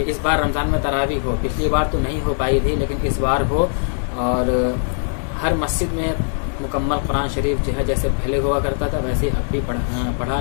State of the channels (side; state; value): right; silent; digital silence